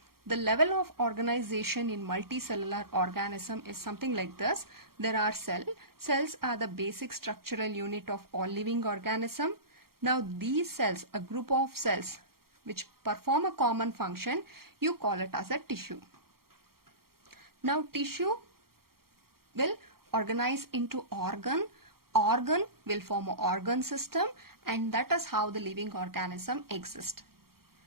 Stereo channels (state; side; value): late; left; 0.94 ms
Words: The level of organization in multicellular organism is something like this. There are cells. Cells are the basic structural unit of all living organism. Now these cells, a group of cells which perform a common function, you call it as a tissue. Now tissue will organize into organ. Organ will form an organ system, and that is how the living organism exists.